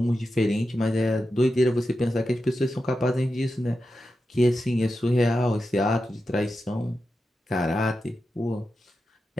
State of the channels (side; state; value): both; normal; correlation 0.90